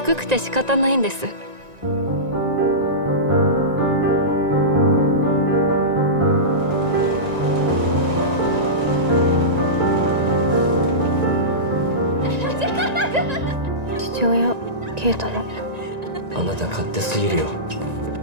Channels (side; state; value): left; late; 1.9 ms